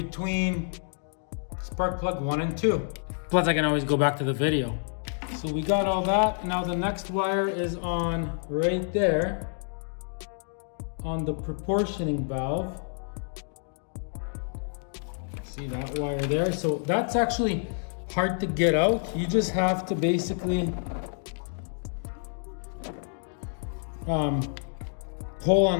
spark plug 1 and 2. Plus I can always go back to the video. So we got all that. Now the next wire is on right there on the proportioning valve. See that wire there? So that's actually hard to get out. You just have to basically pull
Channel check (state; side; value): silent; right; 59 dB below the other